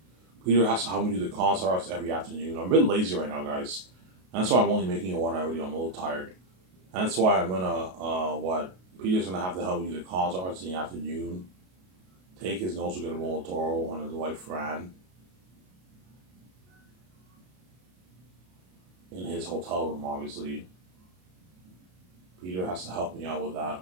Peter has to help me do the concert arts every afternoon. I'm a bit lazy right now, guys. That's why I'm only making a 1 hour video. I'm a little tired. That's why I'm gonna, Peter's gonna have to help me do the concert arts in the afternoon. Take his notes with Guillermo del Toro and his wife Fran in his hotel room, obviously. Peter has to help me out with that,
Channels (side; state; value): left; late; 33 ms